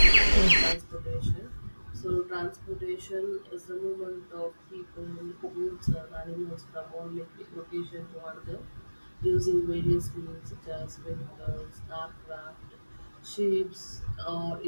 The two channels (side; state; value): both; inverted; correlation -1.00